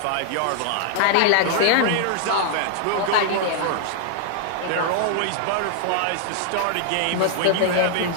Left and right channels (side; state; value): both; different; correlation -0.01